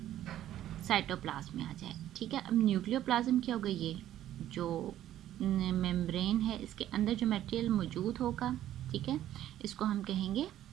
साइटोप्लाज्म में आ जाए। ठीक है, अब न्यूक्लियोप्लाज्म क्या होगा? ये जो मेम्ब्रेन है इसके अंदर जो मटेरियल मौजूद होगा, ठीक है, इसको हम कहेंगे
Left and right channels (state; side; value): quieter; left; 12.4 dB